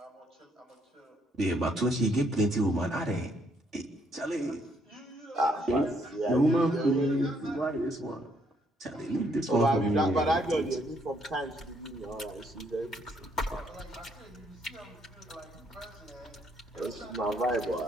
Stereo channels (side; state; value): both; normal; correlation 0.71